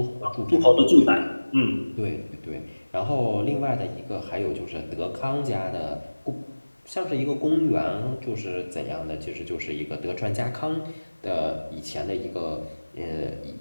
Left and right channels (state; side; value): inverted; both; correlation -1.00